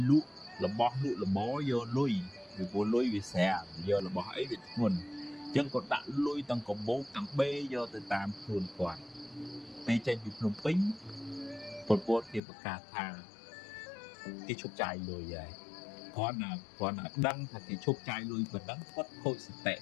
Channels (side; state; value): right; drops out; at 12.4 s